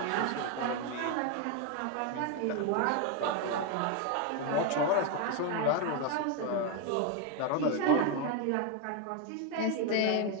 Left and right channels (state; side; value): different; both; correlation 0.01